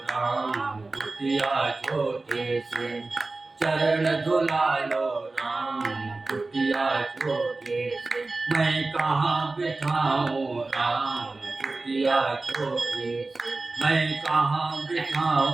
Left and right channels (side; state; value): left; quieter; 3.4 dB